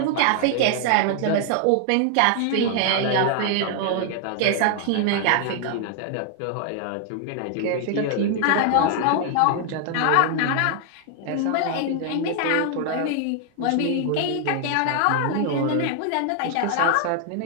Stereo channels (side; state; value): both; different; correlation 0.00